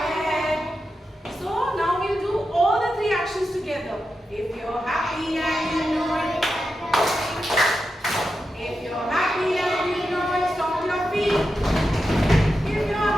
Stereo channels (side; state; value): both; normal; correlation 0.89